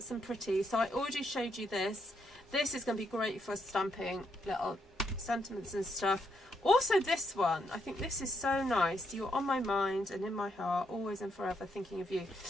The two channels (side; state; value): both; normal; correlation 0.77